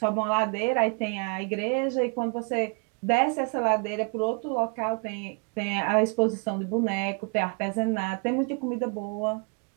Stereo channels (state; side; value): quieter; left; 33.6 dB